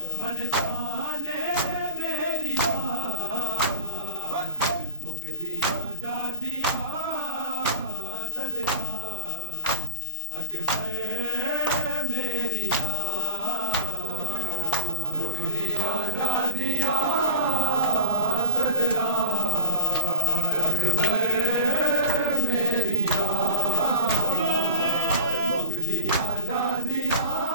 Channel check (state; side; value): inverted; both; correlation -0.42